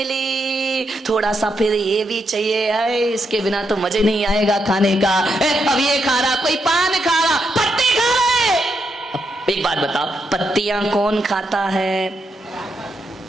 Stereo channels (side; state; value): both; normal; correlation 0.81